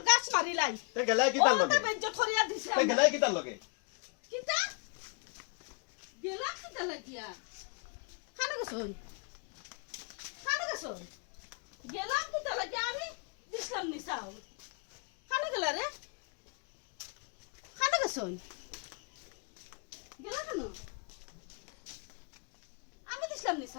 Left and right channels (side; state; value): right; quieter; 34.9 dB